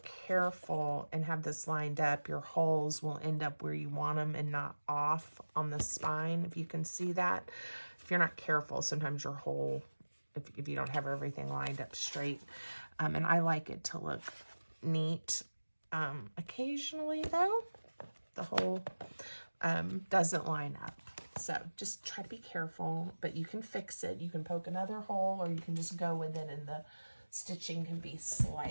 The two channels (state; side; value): inverted; both; correlation -1.00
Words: and have this lined up, your holes will end up where you want them and not off on the spine, if you can see that. If you're not careful, sometimes your hole, if you don't have everything lined up straight. And I like it to look neat occasionally, though. the hole doesn't line up. So just try to be careful, but you can fix it. You can poke another hole, or you can just go with it and the stitching can be